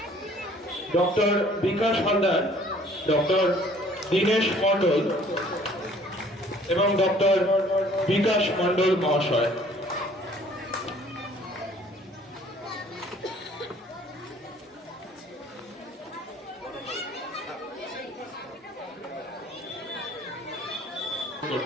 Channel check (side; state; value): both; normal; correlation 0.55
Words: ডক্টর বিকাশ হালদার, ডক্টর দীনেশ মণ্ডল এবং ডক্টর বিকাশ মণ্ডল মহাশয়।